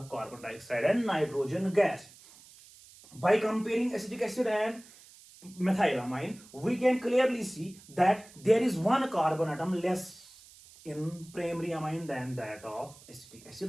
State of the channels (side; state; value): right; noise; hiss, 22 dB below the sound